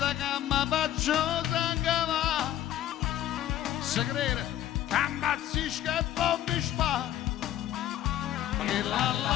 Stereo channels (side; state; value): right; quieter; 12.3 dB